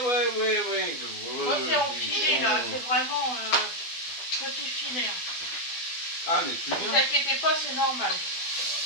Moi, c'est en filet, là. C'est vraiment petit filet. Ah, mais plus Ne vous bien. inquiétez pas, c'est normal.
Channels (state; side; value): late; right; 12 ms